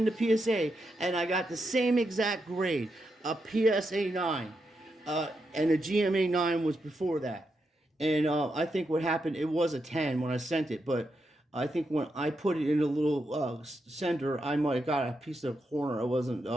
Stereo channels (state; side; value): normal; both; correlation 0.84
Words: PSA, and I got the same exact grade, a PSA 9, and a GMA 9 was before that. And I think what happened, it was a 10 when I sent it, but I think when I put it in a little sender, I might have got a piece of corner. I wasn't